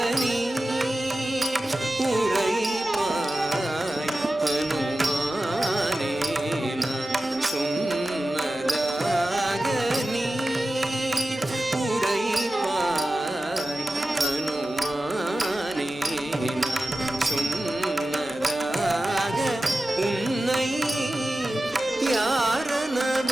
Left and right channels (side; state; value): both; normal; correlation 0.94